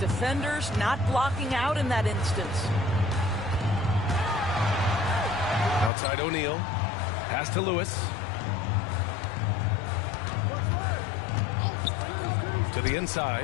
not blocking out in that instance. Outside O'Neal. Pass to Lewis. To the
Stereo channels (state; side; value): drops out; right; at 5.9 s